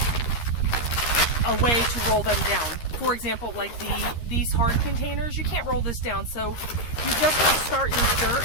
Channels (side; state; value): right; late; 13 ms